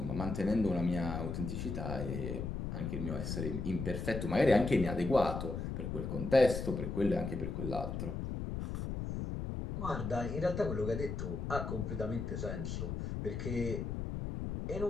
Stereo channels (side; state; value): left; noise; rumble, 4 dB below the sound